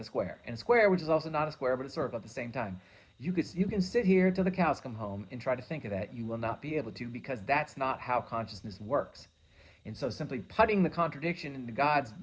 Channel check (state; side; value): identical; both; correlation 1.00